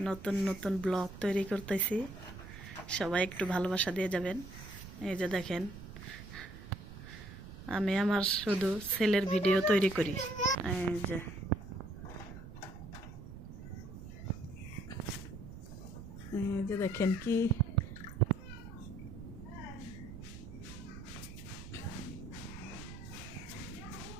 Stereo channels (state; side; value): noise; right; rumble, 13 dB below the sound